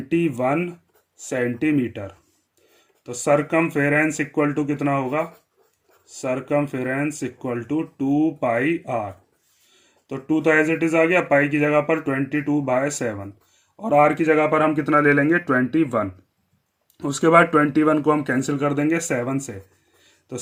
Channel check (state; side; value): identical; both; correlation 1.00